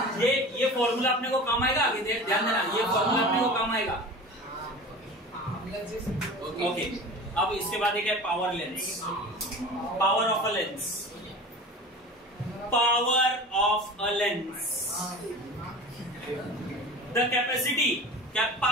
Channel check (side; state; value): both; normal; correlation 0.36